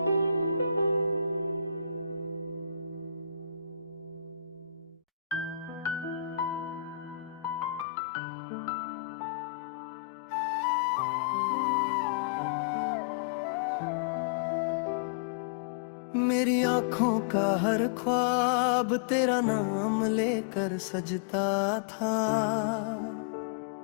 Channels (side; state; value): right; drops out; at 7.9 s